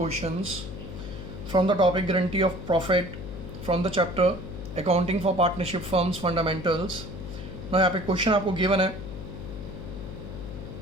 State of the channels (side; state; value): left; noise; hum, 10 dB below the sound